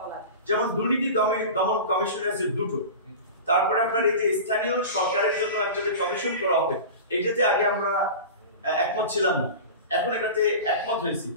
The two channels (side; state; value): both; inverted; correlation -0.32